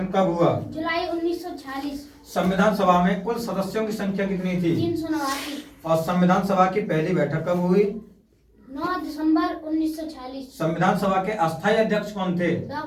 कब हुआ? जुलाई 1946। संविधान सभा में कुल सदस्यों की संख्या कितनी थी? 389। और संविधान सभा की पहली बैठक कब हुई? 9 दिसंबर 1946। संविधान सभा के अस्थायी अध्यक्ष कौन थे?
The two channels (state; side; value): identical; both; correlation 1.00